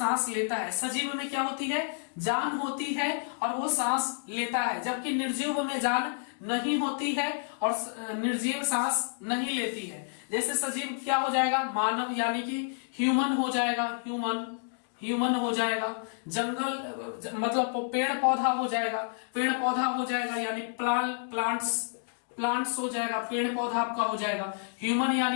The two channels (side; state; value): right; silent; digital silence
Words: लेता है, सजीव में क्या होती है, जान होती है और वो सांस लेता है, जबकि निर्जीव में जान नहीं होती है और निर्जीव सांस नहीं लेती है। जैसे सजीव क्या हो जाएगा, मानव यानी कि ह्यूमन हो जाएगा, ह्यूमन हो जाएगा, जंगल मतलब पेड़ पौधा हो जाएगा, पेड़ पौधा हो जाएगा यानी प्लांट्स हो जाएगा, पेड़ पौधा आपका हो जाएगा। ह्यूमन